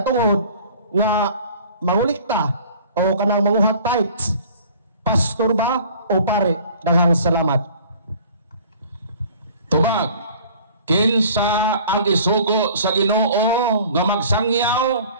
nga mangulikta o kanang manguhat tithes, pastor ba o pare? Daghang salamat. Tubag, kinsa ang isugo sa Ginoo nga magsangyaw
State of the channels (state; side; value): inverted; both; correlation -0.48